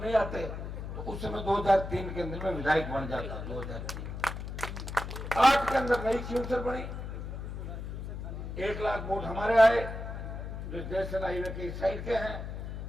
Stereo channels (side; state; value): left; noise; hum, 7 dB below the sound